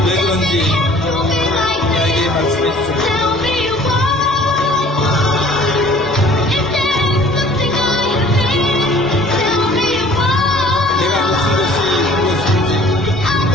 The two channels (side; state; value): both; normal; correlation 0.51